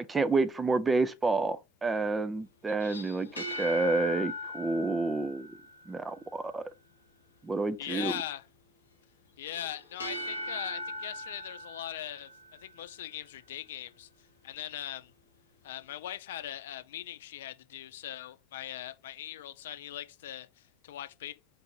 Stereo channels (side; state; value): both; normal; correlation 0.60